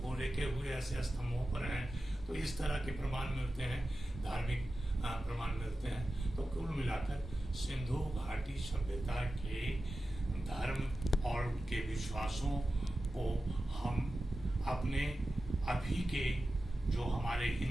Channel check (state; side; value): normal; both; correlation 0.93